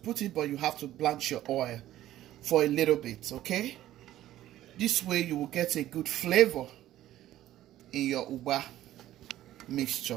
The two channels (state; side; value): quieter; left; 13.7 dB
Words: it, but you have to blanch your oil for a little bit, okay? This way you will get a good flavor in your Ukpa